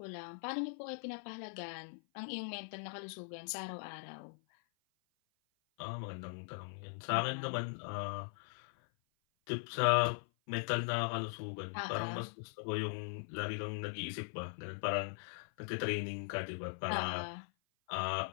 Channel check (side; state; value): right; silent; 51 dB below the other